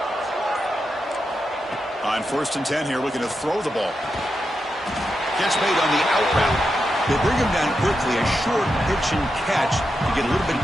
On 1st and 10 here, looking to throw the ball. Catch made on the out route. They bring him down quickly, a short pitch and catch to get a little bit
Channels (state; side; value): normal; both; correlation 0.87